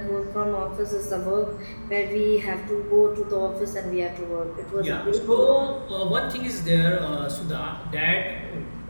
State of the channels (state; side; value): inverted; both; correlation -1.00